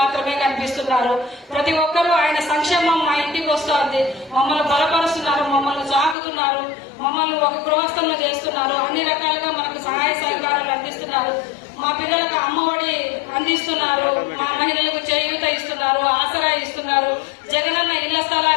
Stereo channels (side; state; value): right; drops out; at 6.2 s